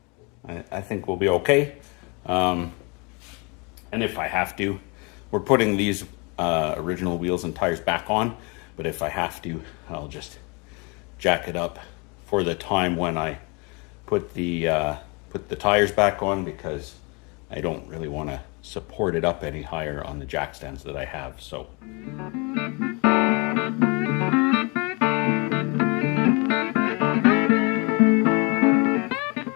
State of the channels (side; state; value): right; quieter; 30.6 dB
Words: I think we'll be okay. And if I have to, we're putting these original wheels and tires back on, but if I have to, I'll just jack it up for the time when I put the tires back on, because I don't really want to support it up any higher on the jack stands that I have. So